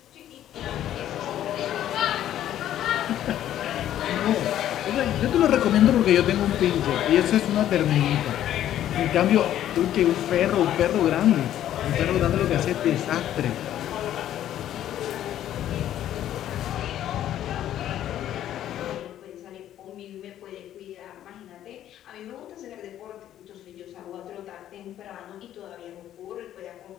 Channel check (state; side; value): quieter; right; 11.7 dB